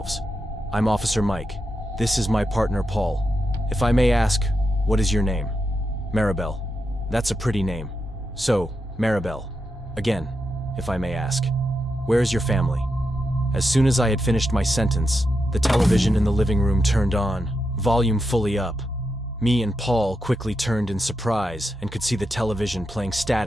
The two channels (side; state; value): both; normal; correlation 0.86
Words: I'm Officer Mike. This is my partner Paul. If I may ask, what is your name? Maribel. That's a pretty name. So, Maribel. Again, if I may ask, where is your family? As soon as I had finished my sentence, the television in the living room turned on, volume fully up. Me and Paul quickly turned in surprise and could see the television playing